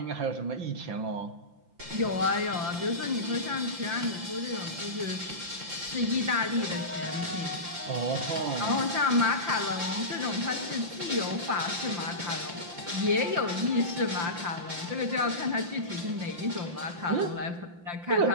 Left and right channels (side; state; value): left; late; 5.8 ms